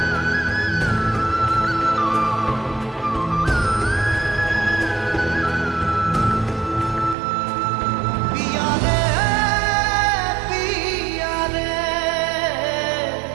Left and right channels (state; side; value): drops out; left; at 7.2 s